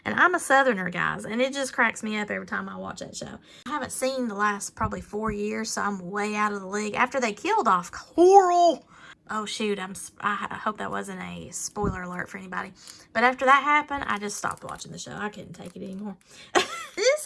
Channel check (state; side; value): identical; both; correlation 1.00